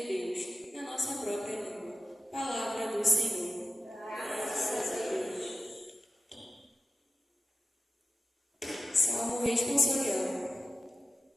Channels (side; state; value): both; normal; correlation 0.93